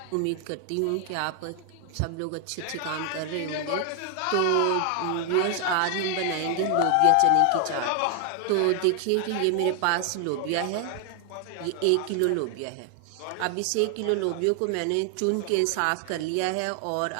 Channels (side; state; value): both; different; correlation 0.00